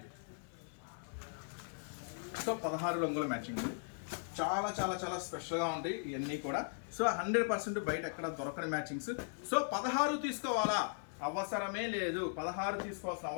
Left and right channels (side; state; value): right; silent; 52 dB below the other